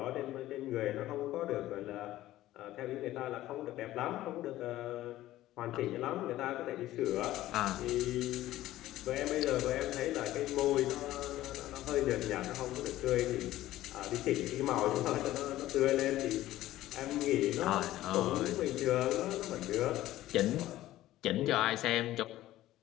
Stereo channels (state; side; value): quieter; right; 15.0 dB